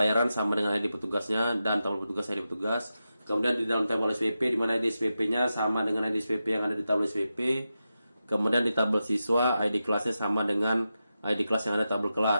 sama dengan ID petugasnya dan tabel petugas ID petugas. Kemudian di dalam tabel SPP, di mana ID SPP-nya sama dengan ID SPP yang ada di tabel SPP. Kemudian di tabel siswa, ID kelasnya sama dengan ID kelas yang ada di tabel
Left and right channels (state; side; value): inverted; both; correlation -0.90